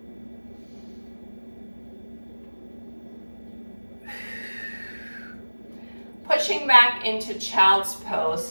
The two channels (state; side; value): inverted; both; correlation -1.00